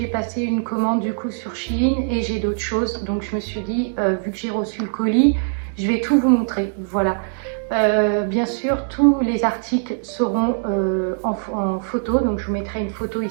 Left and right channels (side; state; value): left; silent; digital silence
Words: passé une commande du coup sur Shein et j'ai d'autres choses. Donc je me suis dit, vu que j'ai reçu le colis, je vais tout vous montrer. Voilà. Bien sûr, tous les articles seront en photo. Donc je vous mettrai une photo